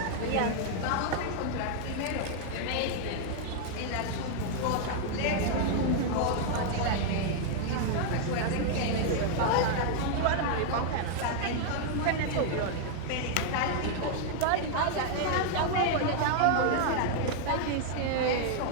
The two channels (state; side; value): different; both; correlation 0.00